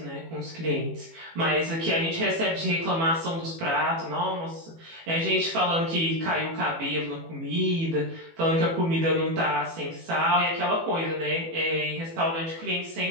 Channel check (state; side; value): late; left; 18 ms